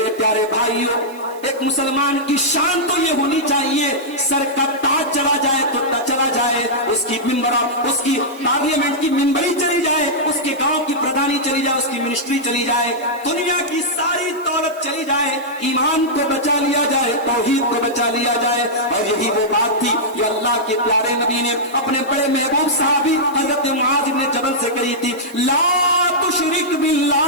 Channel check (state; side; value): noise; right; hiss, 24 dB below the sound